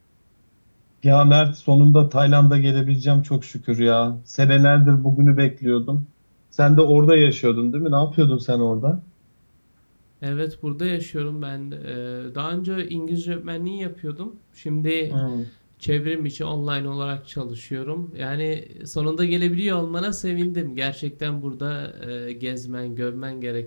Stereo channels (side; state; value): both; inverted; correlation -1.00